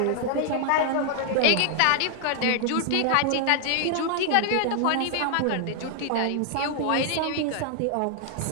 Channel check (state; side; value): different; both; correlation 0.00